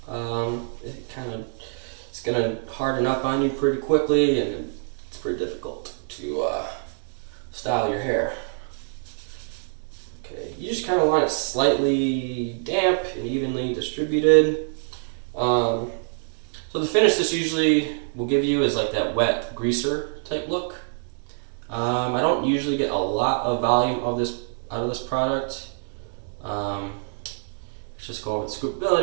it's gonna harden up on you pretty quickly, and it's pretty difficult to style your hair. Okay, you just kind of want it slightly damp and evenly distributed. So the finish this usually will give you is like that wet greaser type look. I don't usually get a lot of volume out of this product. Let's just go over the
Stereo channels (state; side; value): silent; left; digital silence